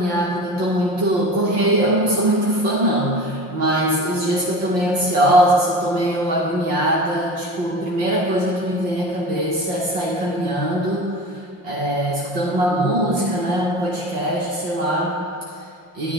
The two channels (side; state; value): left; late; 5.6 ms